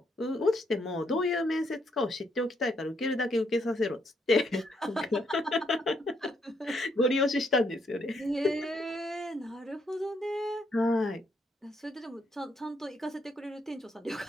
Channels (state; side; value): normal; both; correlation 0.74